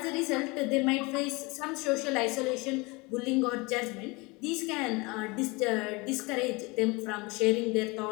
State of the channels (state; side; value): quieter; right; 25.8 dB